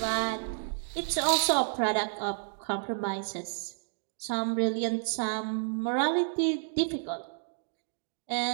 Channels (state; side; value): silent; left; digital silence